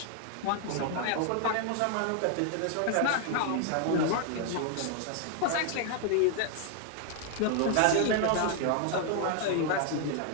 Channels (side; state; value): both; different; correlation 0.00